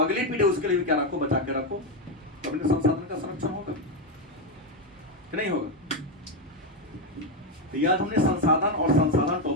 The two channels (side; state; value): both; normal; correlation 0.07